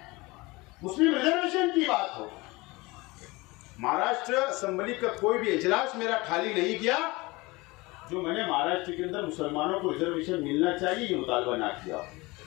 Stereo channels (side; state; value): right; quieter; 23.1 dB